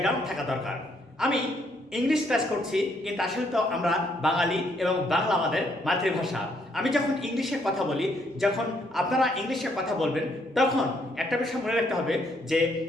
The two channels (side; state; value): both; normal; correlation 0.71